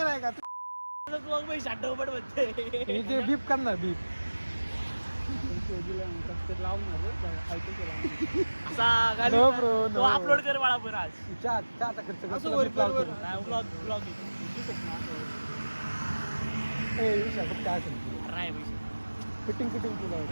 नाही का मग मी शाट पड म्हणते हे जे बीप करणार बीप असा घाली No, ना. bro, तो no. अपलोड कर मला पण आज चहाचा खर्च कर, असं तुला वर बीप कर, लावतो. वर. नाही ब्लॉग ए, विशाल, बघ काय असेल. नाही पैसे फिटिंग तुला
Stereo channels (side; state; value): both; inverted; correlation -1.00